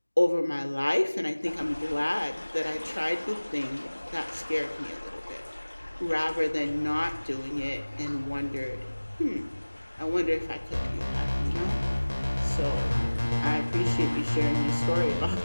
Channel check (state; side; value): inverted; both; correlation -1.00